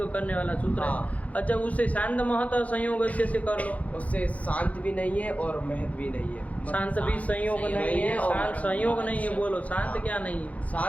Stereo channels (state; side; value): late; right; 0.068 ms